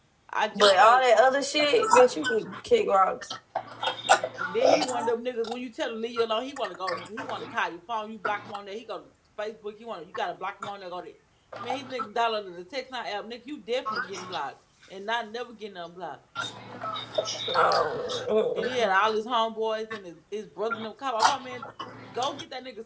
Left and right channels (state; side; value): identical; both; correlation 1.00